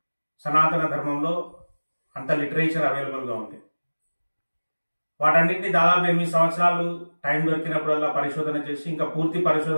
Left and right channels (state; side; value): inverted; both; correlation -1.00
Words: సనాతన ధర్మంలో అంత లిటరేచర్ అవైలబుల్గా ఉంది. వాటన్నిటిని దాదాపు 8 సంవత్సరాలు టైం దొరికినప్పుడల్లా పరిశోధన చేసి, ఇంకా పూర్తి